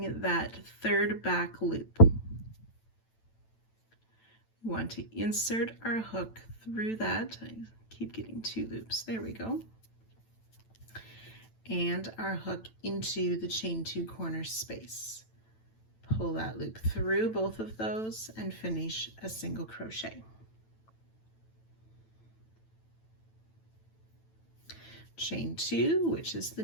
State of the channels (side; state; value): right; late; 9.0 ms